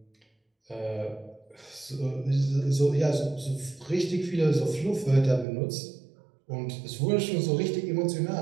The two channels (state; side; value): drops out; left; at 5.5 s